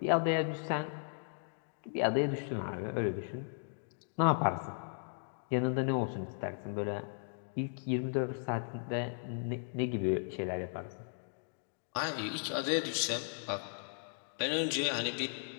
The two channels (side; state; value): right; silent; digital silence